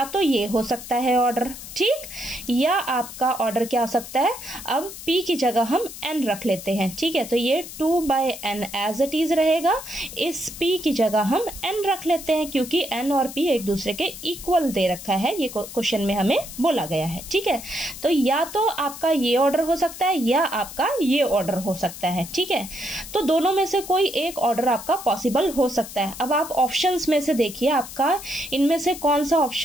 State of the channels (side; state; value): left; noise; hiss, 12 dB below the sound